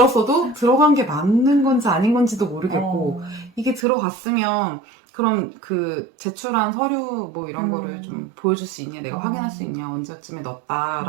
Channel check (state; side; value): drops out; left; at 3.9 s